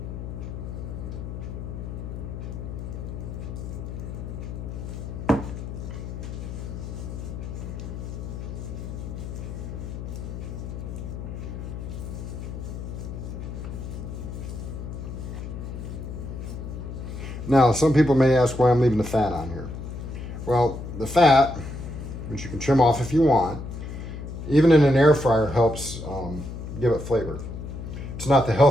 Now, some people may ask why I'm leaving the fat on here. Well, the fat, which you can trim off if you want, even in an air fryer helps give it flavor. It's not the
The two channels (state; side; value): noise; left; hum, 8 dB below the sound